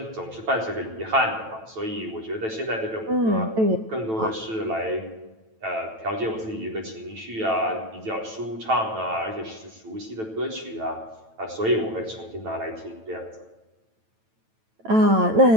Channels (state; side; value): late; left; 9.1 ms